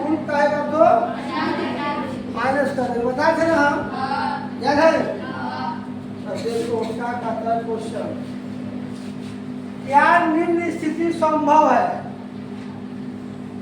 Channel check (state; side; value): identical; both; correlation 1.00